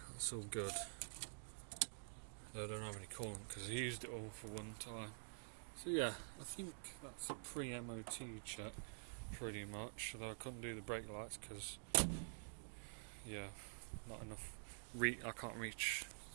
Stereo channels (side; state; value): left; silent; digital silence